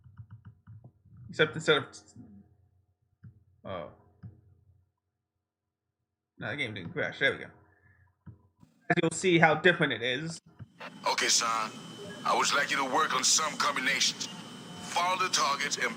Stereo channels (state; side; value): identical; both; correlation 1.00